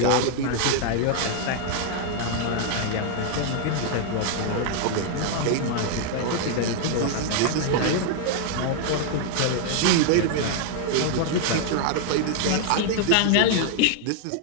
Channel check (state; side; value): different; both; correlation 0.00